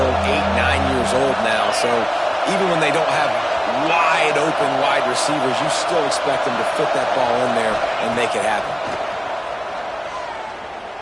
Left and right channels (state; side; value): identical; both; correlation 1.00